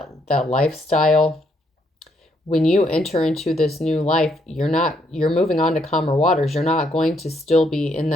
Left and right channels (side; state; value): both; normal; correlation 0.73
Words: lifestyle. When you enter into this new life, you're moving on to calmer waters. You're not going to still be in